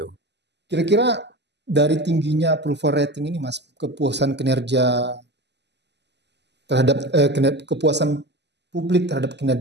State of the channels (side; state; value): left; late; 0.50 ms